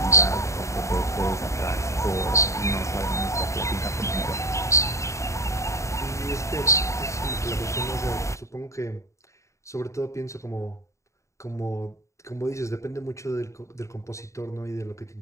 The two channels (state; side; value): late; right; 0.14 ms